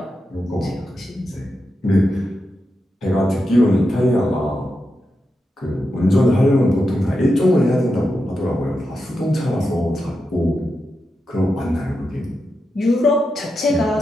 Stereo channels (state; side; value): normal; both; correlation 0.88